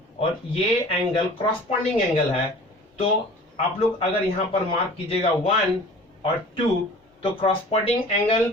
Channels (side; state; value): both; normal; correlation 0.44